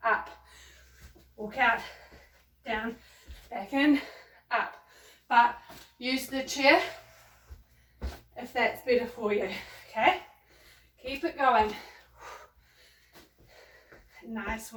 up. Walk out, down, back in, up. But use the chair if that's better for you, okay? Keep it going. Nice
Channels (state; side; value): identical; both; correlation 1.00